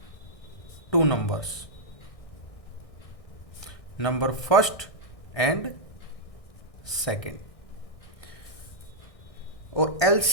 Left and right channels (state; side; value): late; right; 1.6 ms